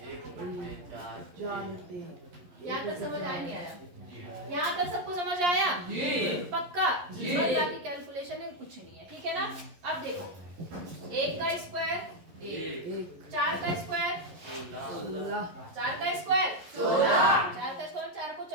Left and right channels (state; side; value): late; left; 11 ms